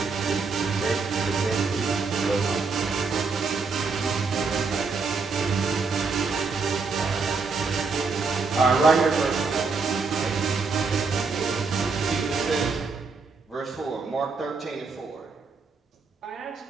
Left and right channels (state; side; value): quieter; left; 4.6 dB